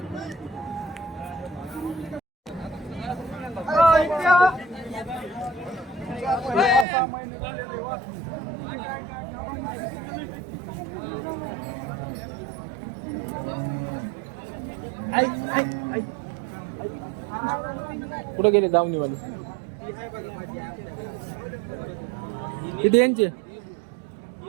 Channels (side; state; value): left; drops out; at 6.9 s